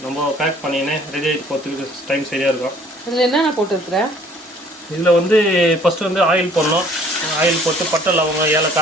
நம்ம பேக் பண்ணினே ரெடி ஆகிட்டு போகிறதுக்கு டைம் சரியாக இருக்கும். இதில் என்னென்ன போட்டுருக்குறேன்? இதில் வந்து ஃபஸ்ட்டு வந்து ஆயில் போடணும். ஆயில் போட்டு பட்டை லவங்கம்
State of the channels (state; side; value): normal; both; correlation 0.57